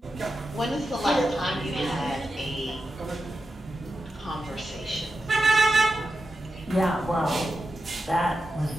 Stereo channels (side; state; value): both; normal; correlation 0.90